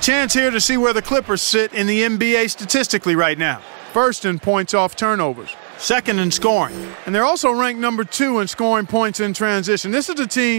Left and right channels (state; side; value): silent; left; 65 dB below the other